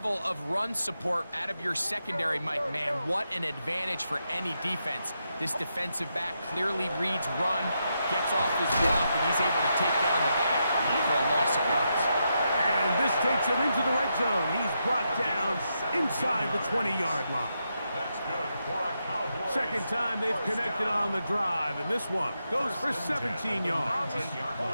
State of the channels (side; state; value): both; inverted; correlation -0.83